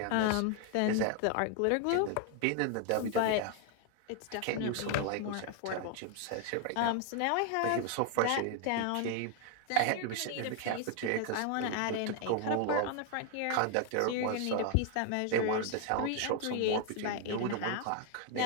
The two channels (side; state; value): both; different; correlation 0.00